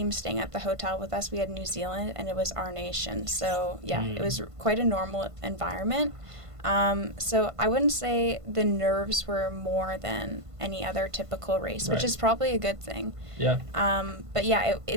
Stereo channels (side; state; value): left; late; 1.5 ms